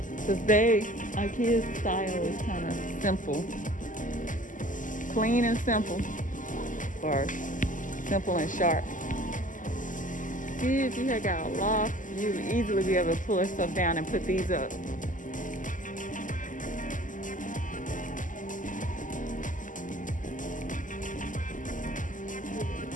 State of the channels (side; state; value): right; late; 0.38 ms